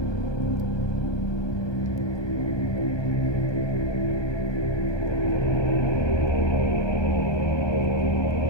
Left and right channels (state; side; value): late; right; 1.2 ms